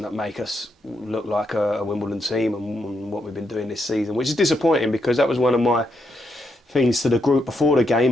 that make us look like a Wimbledon team and what we've been doing this season, which is disappointing, because that was one of my things to the group before the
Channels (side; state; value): both; normal; correlation 0.80